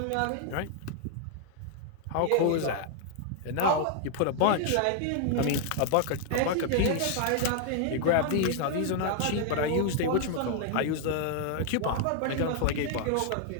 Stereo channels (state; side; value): different; both; correlation 0.00